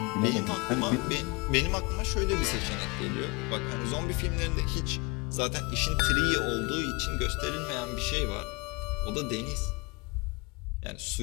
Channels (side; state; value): right; quieter; 28.1 dB